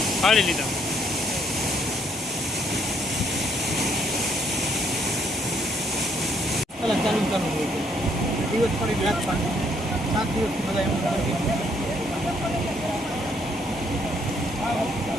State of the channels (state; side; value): normal; both; correlation 0.69